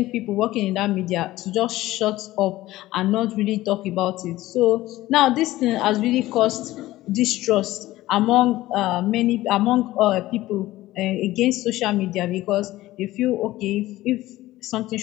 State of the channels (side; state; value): right; quieter; 16.6 dB